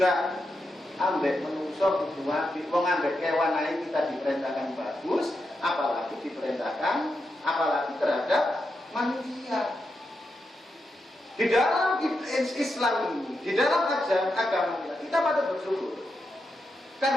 ambek menungso kudu apik, wong ambek kewan ae kita diperintahkan bagus, apalagi terhadap manusia. Di dalam Islam ini, di dalam ajaran agama kita patut bersyukur.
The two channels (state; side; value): normal; both; correlation 0.86